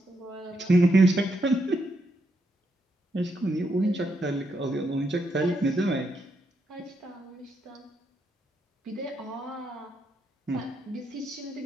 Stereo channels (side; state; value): both; normal; correlation 0.80